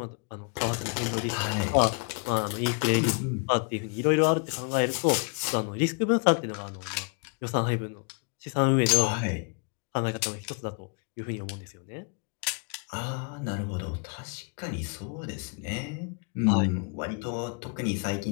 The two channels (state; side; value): quieter; right; 37.6 dB